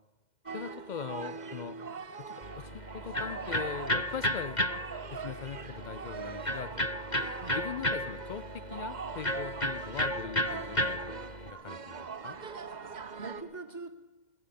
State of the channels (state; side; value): late; right; 2.1 ms